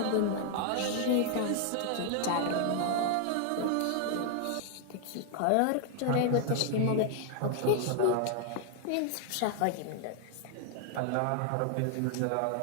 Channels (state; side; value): different; both; correlation 0.00